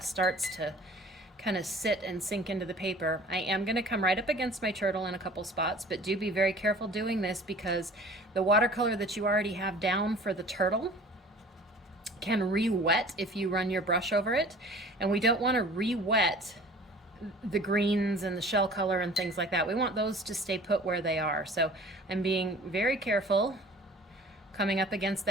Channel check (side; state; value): both; normal; correlation 0.46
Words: starts to kind of sit and sink into the paper. I am going to come right up against my turtle in a couple spots, but do be very careful doing this because the watercolor that you already have down for the turtle can re-wet if you run your brush over it, and we don't want to re-wet the greens and the shell color and things like that. We want those to stay put where they are. So I'm being very careful coming up against